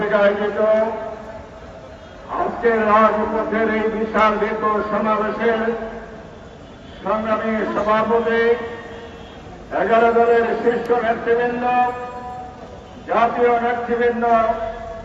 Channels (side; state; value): both; identical; correlation 1.00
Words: আয়োজিত আজকের রাজপথের এই বিশাল দীর্ঘ সমাবেশের সংগ্রামী সভাপতি, 11 দলের শীর্ষ নেতৃবৃন্দ, জাতীয় নেতৃবৃন্দ,